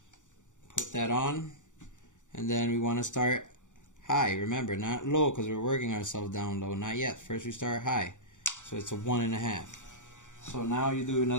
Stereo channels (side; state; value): right; late; 0.86 ms